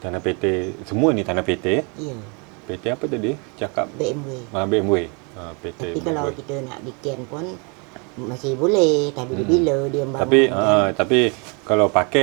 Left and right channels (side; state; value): left; quieter; 33.4 dB